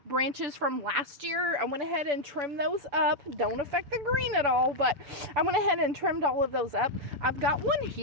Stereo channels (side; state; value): left; late; 7.0 ms